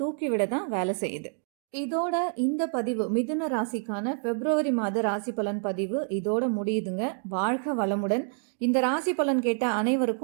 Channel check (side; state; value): left; silent; 55 dB below the other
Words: தூக்கி விட தான் வேலை செய்யுது. இதோட இந்த பதிவு, மிதுன ராசிக்கான பிப்ரவரி மாத ராசி பலன் பதிவு இதோட முடியுதுங்க. வாழ்க வளமுடன். இந்த ராசி பலன் கேட்ட